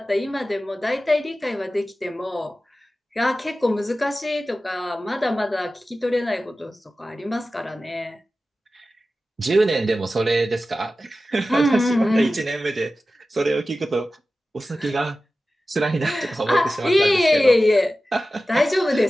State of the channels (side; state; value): both; normal; correlation 0.95